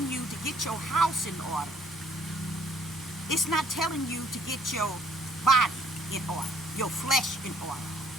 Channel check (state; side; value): normal; both; correlation 0.62